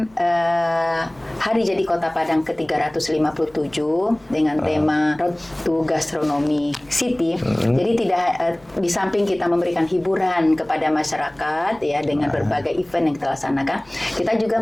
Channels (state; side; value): noise; left; hum, 30 dB below the sound